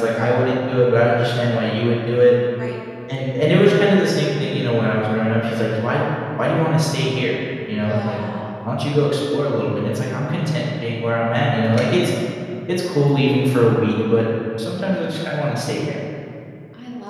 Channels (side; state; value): both; identical; correlation 1.00